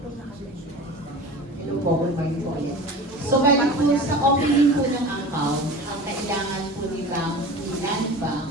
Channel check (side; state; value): both; normal; correlation 0.36